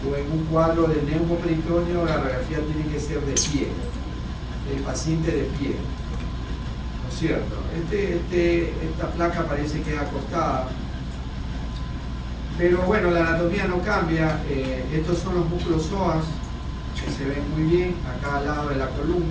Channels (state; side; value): identical; both; correlation 1.00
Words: o en un cuadro de neumoperitoneo, la radiografía tiene que ser de pie, el paciente de pie, ¿no es cierto? Esta placa parece que es acostada, pero bueno, la anatomía no cambia. Estos son los músculos psoas, que se ven muy bien a cada lado de la